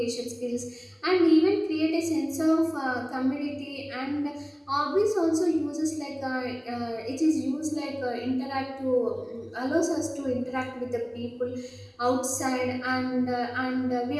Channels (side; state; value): both; identical; correlation 1.00